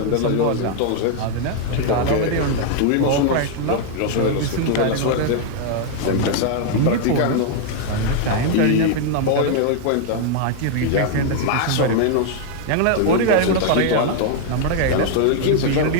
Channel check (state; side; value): different; both; correlation 0.00